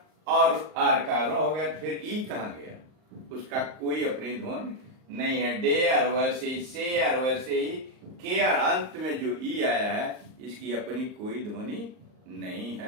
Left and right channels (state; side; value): late; left; 38 ms